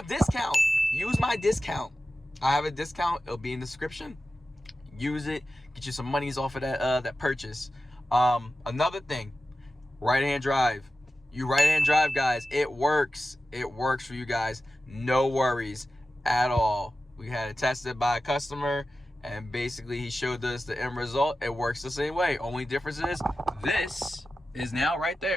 discount. I have a discount. It'll be in the description. Use it, get you some monies off of that purchase. Another thing, right-hand drive. You right-hand drive, guys, it works for you guys. No worries at all. We had it tested by a customer and basically he showed us the end result. It works the same way. Only difference is this is now right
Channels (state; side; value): normal; both; correlation 0.94